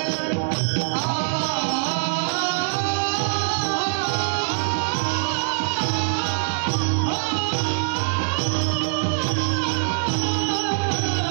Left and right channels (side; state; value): left; silent; 62 dB below the other